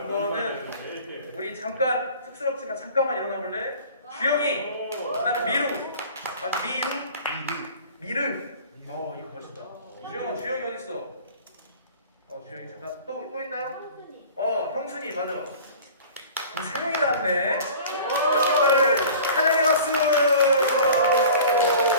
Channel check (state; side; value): inverted; both; correlation -0.43